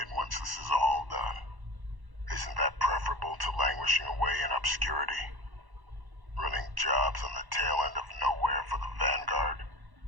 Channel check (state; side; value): late; left; 1.1 ms